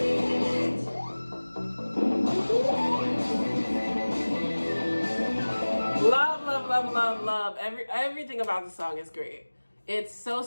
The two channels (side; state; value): both; inverted; correlation -1.00